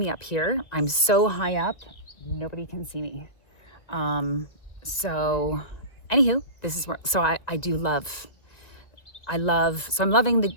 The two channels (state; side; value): late; right; 1.9 ms